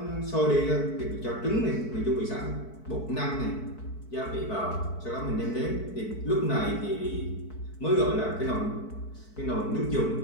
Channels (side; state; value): right; late; 4.6 ms